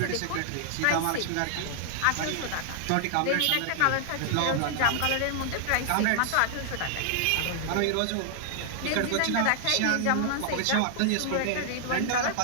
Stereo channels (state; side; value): different; both; correlation -0.01